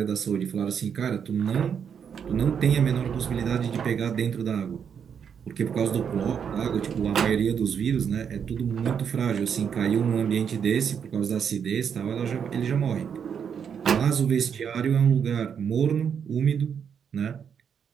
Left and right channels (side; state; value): left; quieter; 7.4 dB